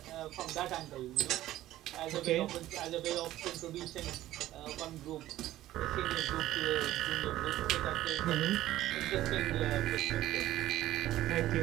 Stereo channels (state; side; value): quieter; left; 14.5 dB